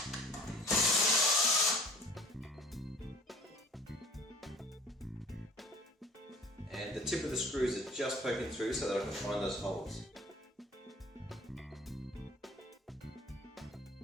And the tip of the screws is just poking through so that I can find those holes.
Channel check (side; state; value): both; normal; correlation 0.48